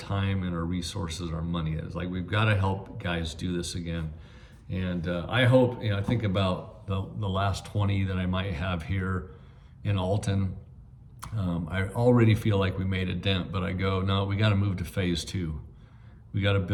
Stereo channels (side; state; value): both; identical; correlation 1.00